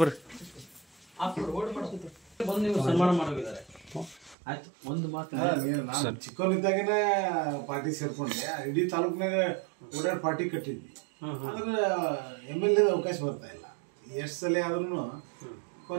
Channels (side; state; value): left; drops out; at 4.4 s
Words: ಬರ್ರಿ. ಬಂದು ನೀವು ಸನ್ಮಾನ ಮಾಡೋಗಿದ್ದಾರೆ. ಆಯ್ತು ಒಂದು ಮಾತು ನಾನು ಚಿಕ್ಕವನಿದ್ದಾಗನೇ ಪಾರ್ಟಿ ಸೇರ್ಕೊಂಡೆ, ಇಡೀ ತಾಲೂಕಿನಾಗ ಓಡಾಡಿ ಪಾರ್ಟಿ ಕಟ್ಟಿದ್ವಿ. ಆದ್ರೆ MLA ಅವಕಾಶ ಬರ್ತಾ ಇಲ್ಲ. ಎಷ್ಟು ಸಲ ಆದ್ರೂ